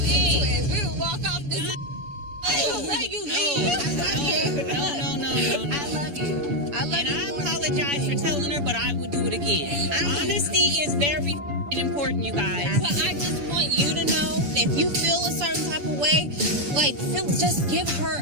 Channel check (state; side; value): late; left; 7.0 ms